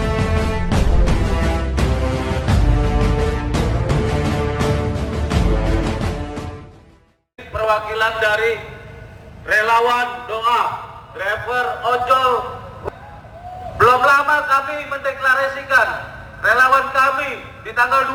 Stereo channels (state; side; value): identical; both; correlation 1.00